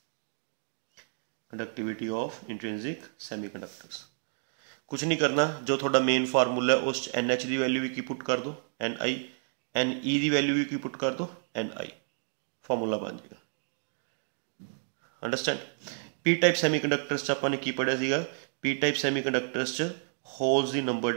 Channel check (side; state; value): left; silent; 58 dB below the other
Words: कंडक्टिविटी ऑफ इंट्रिंसिक सेमीकंडक्टर्स। कुछ नहीं करना, जो थोड़ा मेन फार्मूला है उस एन एच की वैल्यू भी की पुट कर दो एन आई, एन ई की वैल्यू भी की पुट कर दो एन आई, फॉर्मूला बन जाएगा। अंडरस्टैंड। पी टाइप सैमीकंडक्टर्स आपने की पढ़िया सीगा, पी टाइप सैमीकंडक्टर्स होल्स की नंबर